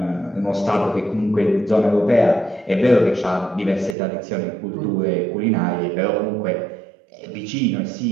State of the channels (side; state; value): left; drops out; at 4.0 s